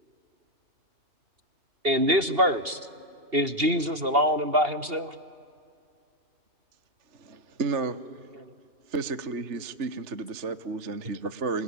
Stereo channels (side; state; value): left; late; 2.8 ms